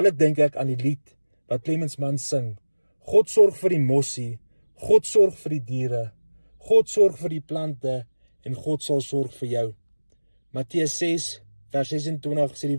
dink ek aan die lied wat Clemens Mann sing. God sorg vir die mossie, God sorg vir die diere, God sorg vir die plante en God sal sorg vir jou. Matteus 6 vers 26 sê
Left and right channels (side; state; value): both; inverted; correlation -1.00